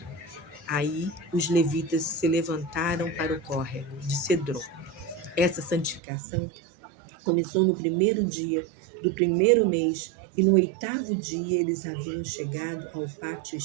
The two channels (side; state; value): left; drops out; at 6.0 s